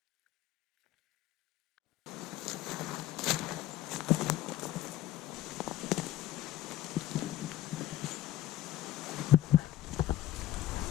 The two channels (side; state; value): right; quieter; 14.0 dB